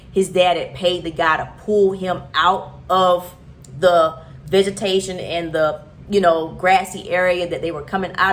his dad had paid the guy to pull him out of the vegetation and the, grassy area that they were coming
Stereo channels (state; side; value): identical; both; correlation 1.00